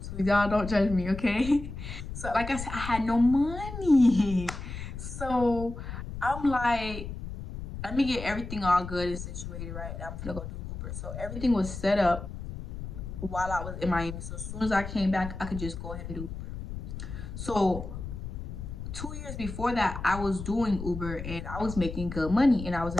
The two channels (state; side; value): noise; left; rumble, 8 dB below the sound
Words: too. Y'all don't judge me, okay? So like I said, I had no money. So I'm like, let me get everything all good and situated, right? I'm gonna go do Uber. So everything was set up while I was in Miami. So as soon as I came back, I could just go ahead and do Uber. So 2 years before that, I was doing Uber and I was making good money and I was